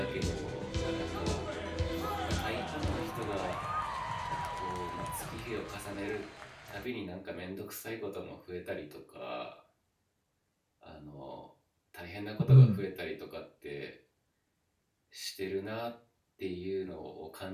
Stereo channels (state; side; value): identical; both; correlation 1.00